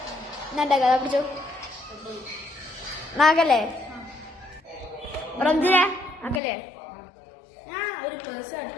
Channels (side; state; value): right; drops out; at 6.4 s